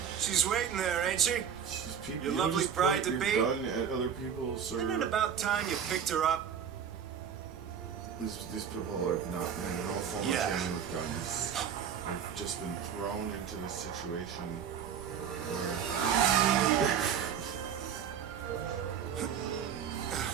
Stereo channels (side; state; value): left; quieter; 8.0 dB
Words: She's waiting there, ain't she? She's people, Your you lovely just bride point to your be? gun at other people, sir. Isn't it about time you picked her up? These people have not been in no form of Yeah. training with guns. They've just been thrown into this situation where